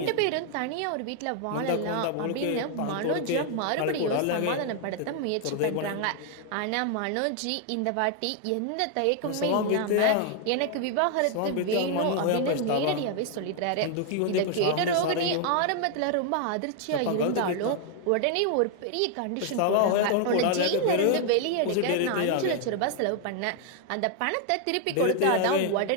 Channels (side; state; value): both; different; correlation 0.00